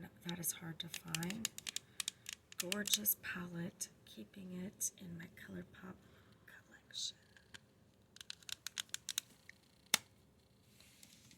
that is hard to find. Gorgeous palette, keeping it in my ColourPop collection.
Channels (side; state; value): both; identical; correlation 1.00